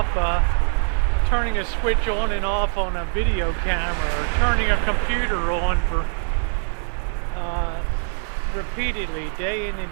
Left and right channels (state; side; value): silent; left; 64 dB below the other